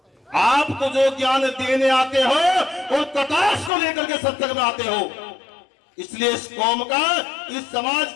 आप तो जो ज्ञान देने आते हो और कटाक्ष को लेकर के सत्संग में आते हो। इसलिए इस कौम का, इस समाज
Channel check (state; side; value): drops out; right; at 3.7 s